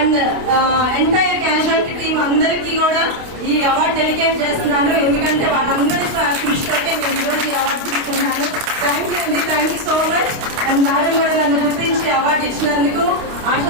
ఎంటైర్ క్యాజువాలిటీ టీమ్ అందరికీ కూడా ఈ అవార్డు డెడికేట్ చేస్తున్నాను. ఎందుకంటే వాళ్ళందరి కృషితోటే నేను ఈరోజు ఈ అవార్డు తీసుకున్నాను. థ్యాంక్ యూ అండి, thank you so much. And madam కూడా నన్ను గుర్తించి అవార్డు ఇచ్చినందుకు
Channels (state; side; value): late; left; 29 ms